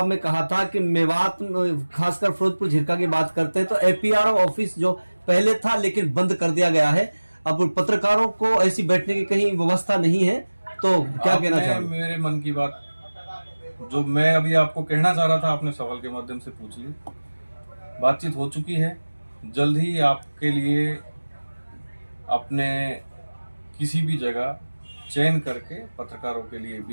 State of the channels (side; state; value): both; inverted; correlation -1.00